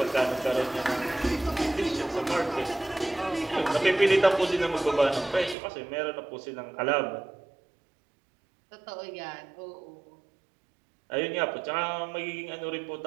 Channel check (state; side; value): drops out; left; at 5.6 s